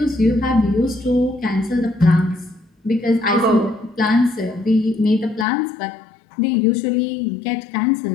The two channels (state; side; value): drops out; right; at 5.5 s